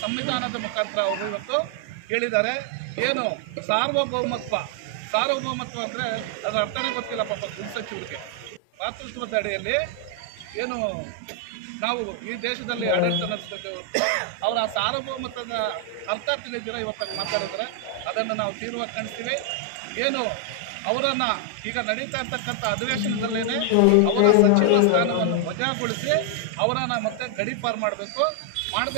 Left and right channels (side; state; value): both; different; correlation 0.00